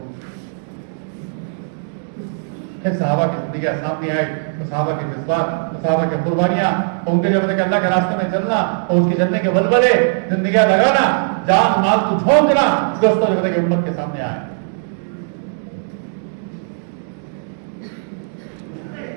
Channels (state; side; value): silent; left; 67 dB below the other